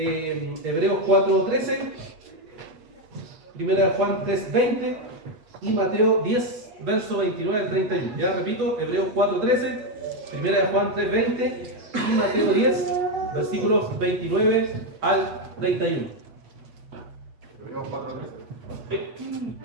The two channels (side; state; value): left; late; 8.3 ms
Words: 4:13, Primera de Juan 3:20 y Mateo 10, verso 29 al 31. Ya repito, Hebreos 4:13, Primera de Juan 3:20 y Mateo 10, versículos 29 al 31. Hebreos 4:13.